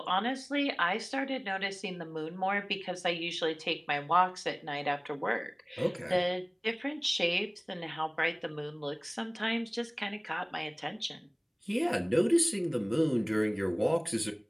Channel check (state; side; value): identical; both; correlation 1.00